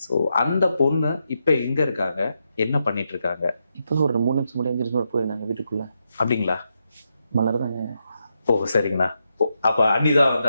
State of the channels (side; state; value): both; inverted; correlation -0.84